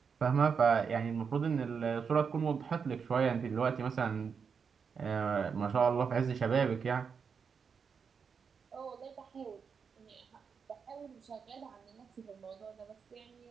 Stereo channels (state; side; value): quieter; left; 6.2 dB